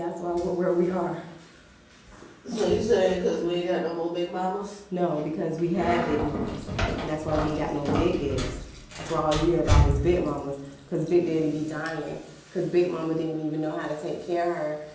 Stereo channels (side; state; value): both; identical; correlation 1.00